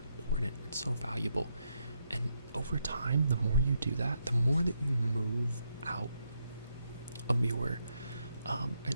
important, it's so valuable. And over time, the more you do that, the more that you move out of your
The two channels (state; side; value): inverted; both; correlation -0.79